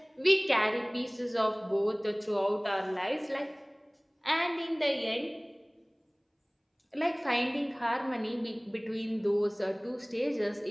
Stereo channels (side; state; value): both; identical; correlation 1.00